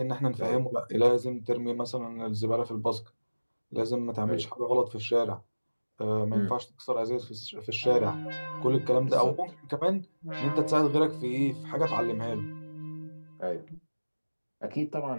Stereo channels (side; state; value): both; inverted; correlation -1.00